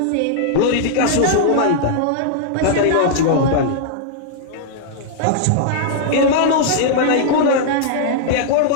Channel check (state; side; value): different; both; correlation -0.01